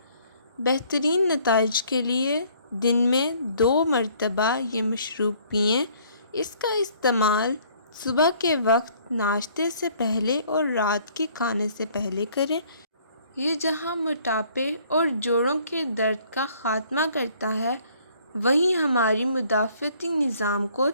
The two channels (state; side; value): inverted; both; correlation -0.60